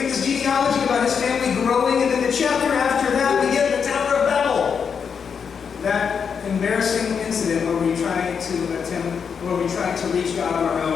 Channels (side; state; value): right; quieter; 6.6 dB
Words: get this genealogy about his family growing, and then the chapter after that, we get the Tower of Babel. That embarrassing incident where we try to reach God on our